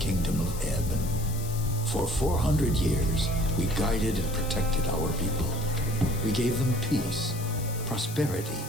of Ebb. For 400 years, we guided and protected our people. We gave them peace, prosperity,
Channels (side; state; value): left; noise; hiss, 12 dB below the sound